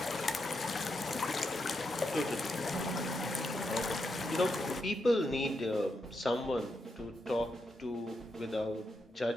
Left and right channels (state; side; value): normal; both; correlation 0.84